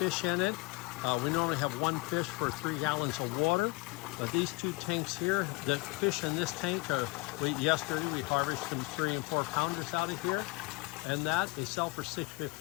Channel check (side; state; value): right; quieter; 25.0 dB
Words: fish in it. We normally have one fish for 3 gallons of water. These two tanks here, the fish in this tank, yesterday we harvested some 3 and 4 pounders out of here, and they sell for